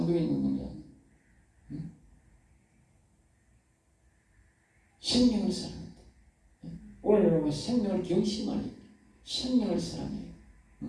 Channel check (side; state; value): both; identical; correlation 1.00